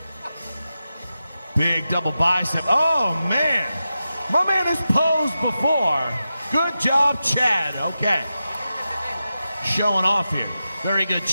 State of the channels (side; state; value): both; inverted; correlation -0.91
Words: Big double bicep. Oh, man. My man has posed before. Good job, Chad. Okay. Showing off here. Very good,